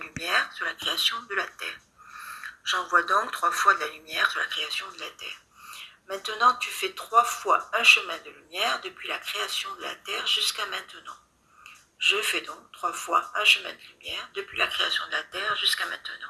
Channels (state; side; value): identical; both; correlation 1.00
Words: sur la création de la Terre. J'envoie donc 3 fois de la lumière sur la création de la Terre. Maintenant, tu fais 3 fois un chemin de lumière depuis la création de la Terre jusqu'à maintenant. Je fais donc 3 fois un chemin de lumière depuis la création de la Terre jusqu'à